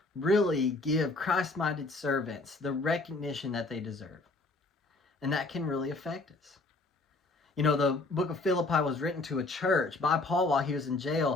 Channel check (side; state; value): right; quieter; 3.2 dB